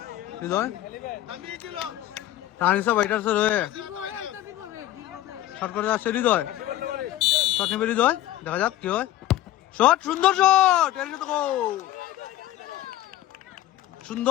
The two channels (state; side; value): quieter; right; 14.2 dB